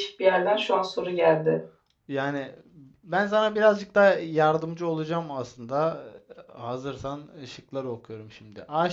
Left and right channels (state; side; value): identical; both; correlation 1.00